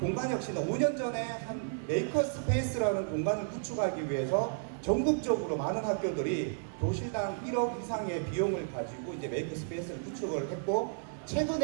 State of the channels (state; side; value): silent; left; digital silence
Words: 5년 전에 한 메이커스페이스라는 공간을 구축하기 위해서 전국적으로 많은 학교들이 교실당 1억 이상의 비용을 가지고 이제 메이커스페이스를 구축을 했고